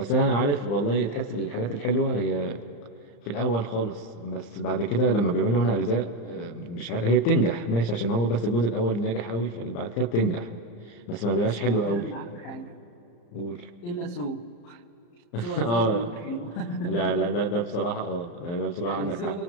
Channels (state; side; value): late; right; 35 ms